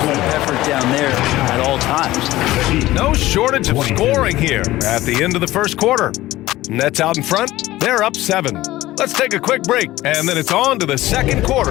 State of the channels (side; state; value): right; quieter; 16.6 dB